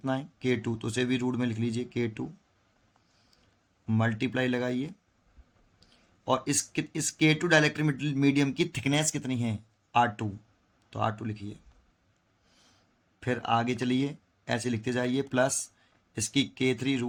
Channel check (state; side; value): identical; both; correlation 1.00